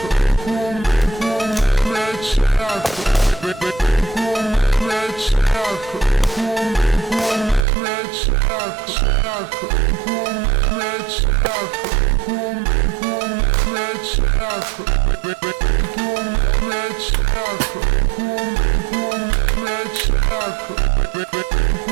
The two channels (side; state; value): left; drops out; at 7.7 s